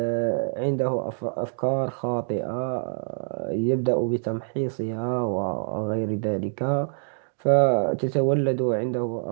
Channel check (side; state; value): left; silent; digital silence